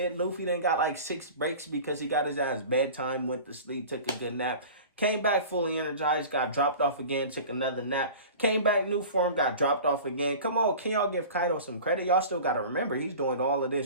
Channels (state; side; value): inverted; both; correlation -0.38